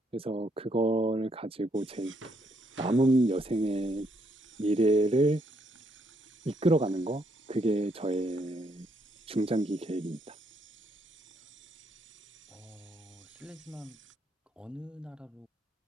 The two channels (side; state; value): both; normal; correlation 0.74